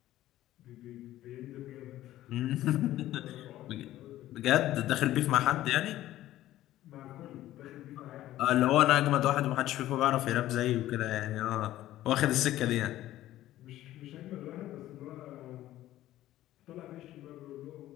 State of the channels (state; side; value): quieter; right; 14.4 dB